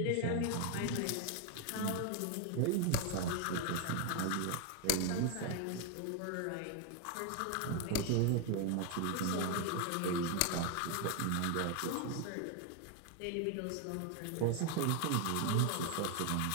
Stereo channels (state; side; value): different; both; correlation 0.01